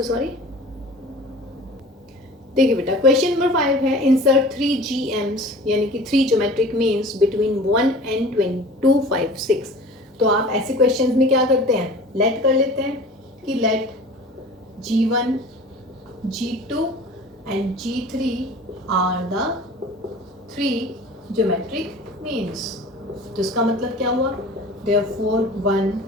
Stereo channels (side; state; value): both; normal; correlation 0.42